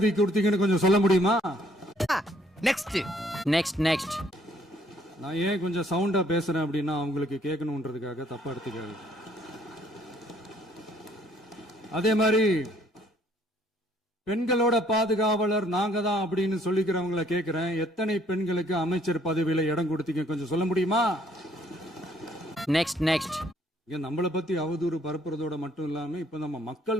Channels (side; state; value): both; normal; correlation 0.64